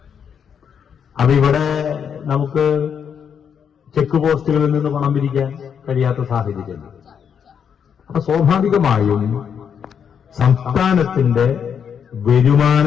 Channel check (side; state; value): right; quieter; 7.6 dB